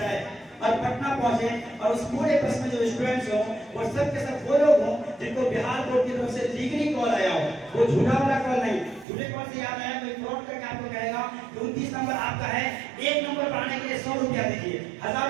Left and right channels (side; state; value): left; drops out; at 9.1 s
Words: और पटना पहुंचे, और उस पूरे बस में जो स्टूडेंट्स हो वो सब के सब वो लोग हों जिनको बिहार बोर्ड की तरफ से लीगली कॉल आया हो। वो झूठा वाला कॉल नहीं, झूठे कॉल से याद आया कोई फ्रॉड करके आपको कहेगा कि 29 नंबर आपका है, 1 नंबर बढ़ाने के लिए 100 रुपया दीजिए, 1000